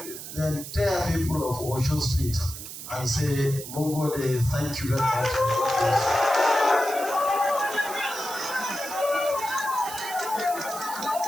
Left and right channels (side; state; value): right; noise; hiss, 10 dB below the sound